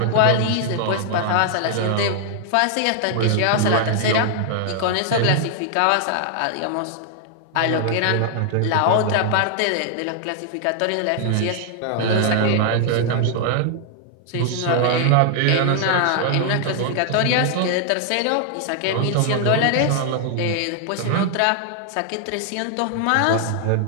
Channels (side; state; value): both; different; correlation 0.00